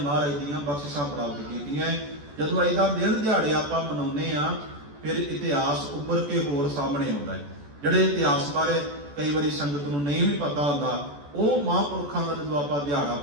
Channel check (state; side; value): late; left; 14 ms